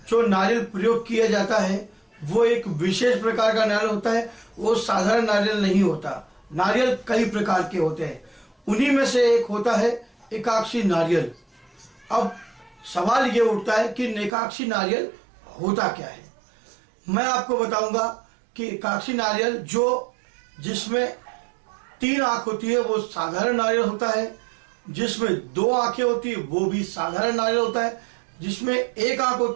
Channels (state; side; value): drops out; left; at 14.3 s